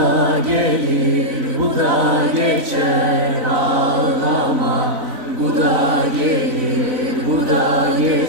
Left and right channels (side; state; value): left; late; 3.9 ms